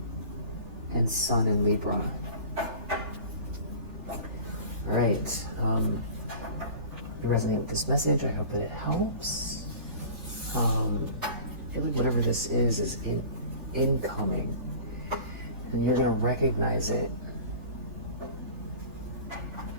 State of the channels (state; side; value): late; left; 3.4 ms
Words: and Sun in Libra. All right. If you resonate with this message, I hope that it helps. I feel like whatever this is incoming, and you're going to recognize it